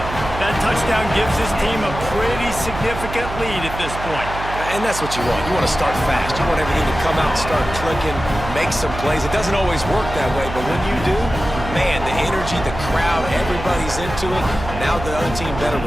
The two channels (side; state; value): right; noise; hum, 9 dB below the sound